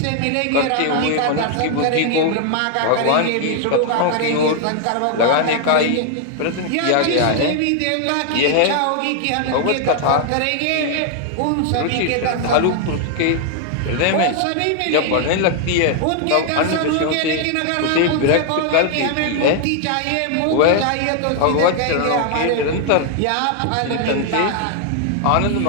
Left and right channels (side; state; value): both; different; correlation 0.00